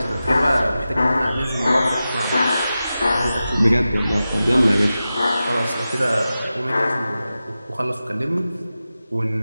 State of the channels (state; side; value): inverted; both; correlation -0.93